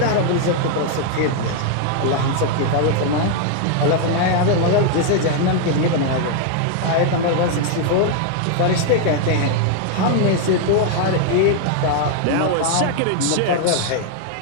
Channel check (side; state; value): both; different; correlation 0.00